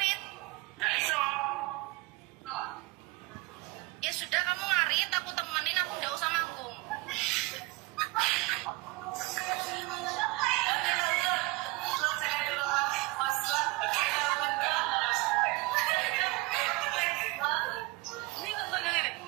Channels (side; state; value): left; quieter; 23.3 dB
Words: Nggak iso. Ya sudah kamu ngarit, aku temenin, aku nggak usah manggung. Ini nonton yang ini.